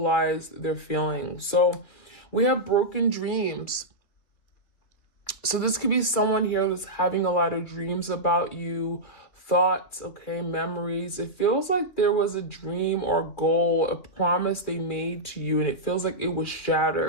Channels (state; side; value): late; right; 3.3 ms